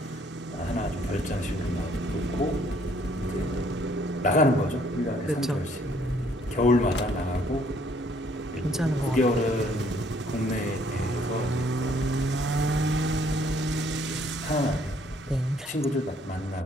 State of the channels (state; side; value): normal; both; correlation 0.64